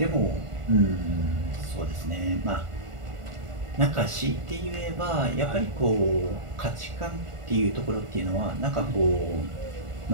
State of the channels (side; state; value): left; late; 1.5 ms